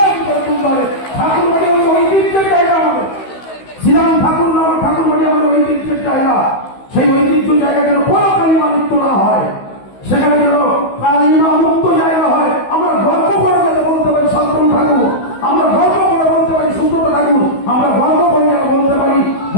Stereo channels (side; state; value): right; late; 16 ms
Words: করে তুলতে হবে। ঠাকুর বাড়ি আমাদের ঐতিহ্যের জায়গা, আমাদের শ্রীরাম ঠাকুর নাম ঠাকুর বাড়ি আমাদের ঐতিহ্যের জায়গা। সেই ঐতিহ্য জায়গা যেন কোনো কালিমা মুক্ত না হয়, সেখানে যেন কালিমা মুক্ত জায়গা হয়। আমরা গর্ব করে যাতে বলতে পারি শান্তনু ঠাকুর, আমরা গর্ব করে বলতে পারি সুব্রত ঠাকুর, আমরা গর্ব করে যেন বলতে পারি